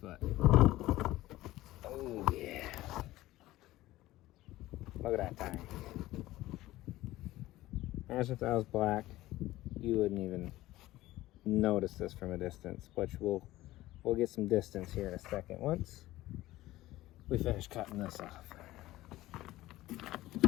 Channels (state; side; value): quieter; right; 16.6 dB